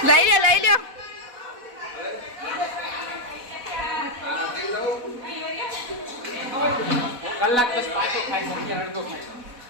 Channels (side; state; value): left; late; 4.1 ms